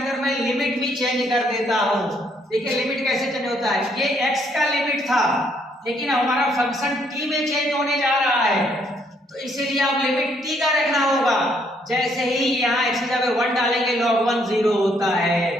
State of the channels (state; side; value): normal; both; correlation 0.69